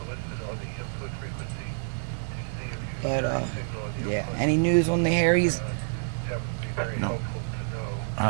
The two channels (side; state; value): left; silent; digital silence